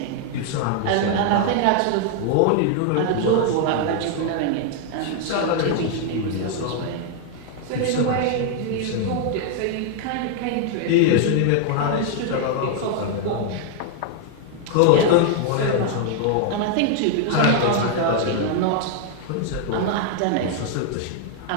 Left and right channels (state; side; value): different; both; correlation 0.00